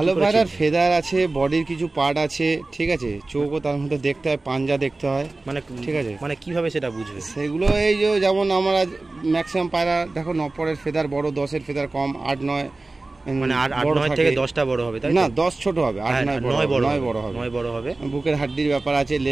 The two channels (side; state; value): left; quieter; 3.2 dB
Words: পায়রার ফেদার আছে, বডির কিছু পার্ট আছে, ঠিক আছে, চোখও তার মধ্যে দেখতে হয়, পাঞ্জা দেখতে হয়, মানে ঠিক আছে। মানে কিভাবে সেটা বুঝবে? সেগুলো এই যে যেমন আমরা ম্যাক্সিমাম পায়রা দেখো, 9 ফেদার বড়, 10 ফেদার কম, 8-9, মানে 8-9 থেকে 10টা বড় হবে, তাই না? 10 ছোট হবে, 8-9 বড় হবে। বুকের হাড্ডির ব্যাপার আছে,